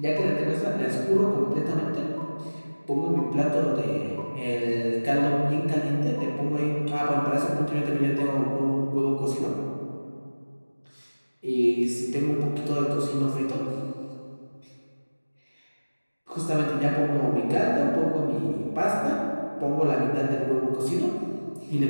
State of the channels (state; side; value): inverted; both; correlation -1.00